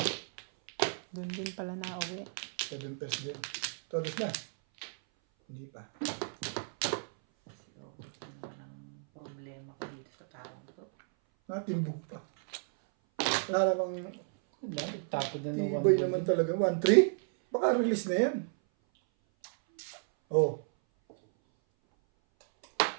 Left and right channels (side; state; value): left; silent; 56 dB below the other